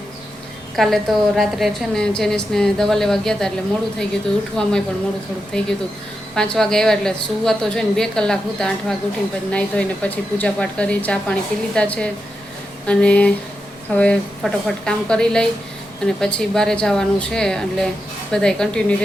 કાલે તો રાત્રે છે ને જેનિસને દવા લેવા ગયા હતા એટલે મોડું થઈ ગયું હતું, ઉઠવામાં પણ મોડું થોડુંક થઈ ગયું હતું. 5 વાગે આવ્યા એટલે સુવા તો છે ને 2 કલાક હતા. 8 વાગે ઉઠીને પછી નાહી ધોઈને પછી પૂજાપાઠ કરી, ચા પાણી પી લીધા છે અને હવે ફટોફટ કામ કરી લઈ અને પછી બહાર જવાનું છે. એટલે બધાય કન્ટિન્યુ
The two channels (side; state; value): both; normal; correlation 0.88